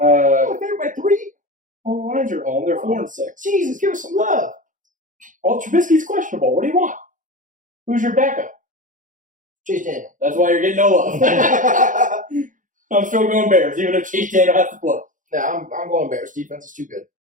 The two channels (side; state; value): left; late; 0.38 ms